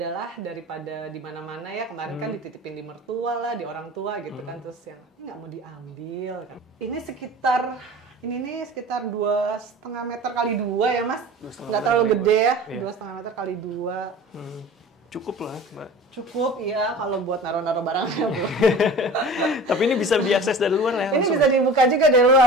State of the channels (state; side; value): normal; both; correlation 0.39